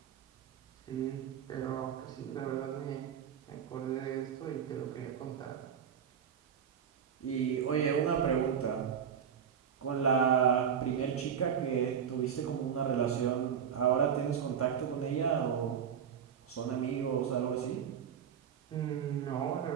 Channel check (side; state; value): left; quieter; 8.0 dB